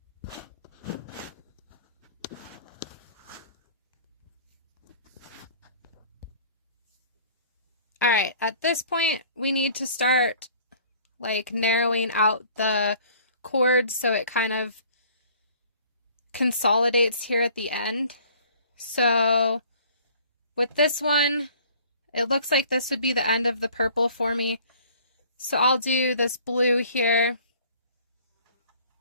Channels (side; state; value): both; inverted; correlation -0.52